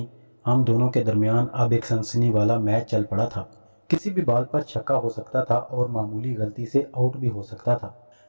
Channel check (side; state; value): both; inverted; correlation -1.00